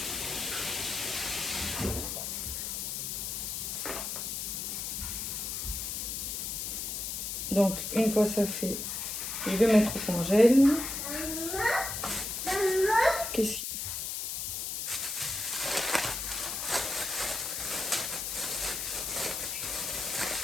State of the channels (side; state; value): left; noise; hiss, 3 dB below the sound